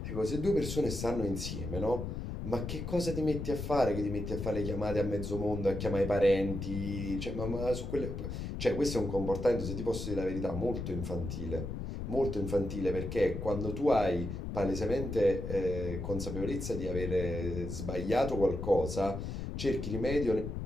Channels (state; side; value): noise; left; rumble, 5 dB below the sound